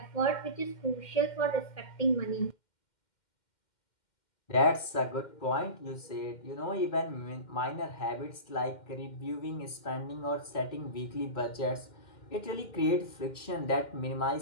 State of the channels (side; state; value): right; late; 2.1 ms